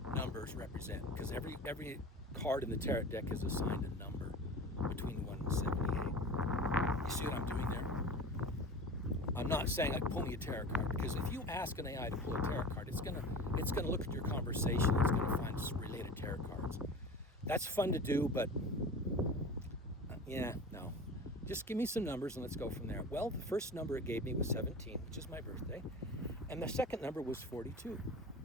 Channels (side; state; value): both; normal; correlation 0.35